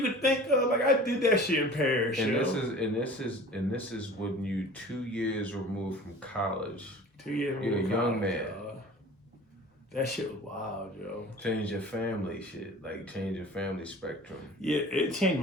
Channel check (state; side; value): normal; both; correlation 0.42